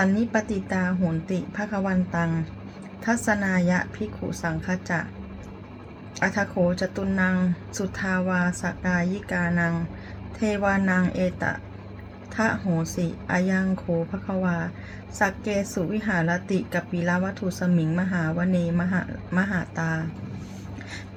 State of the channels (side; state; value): both; identical; correlation 1.00